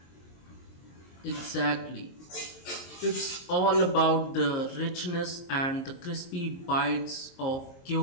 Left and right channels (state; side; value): late; right; 22 ms